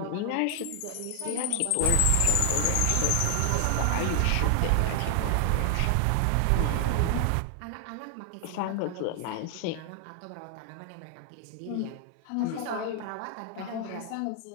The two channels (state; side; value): different; both; correlation 0.00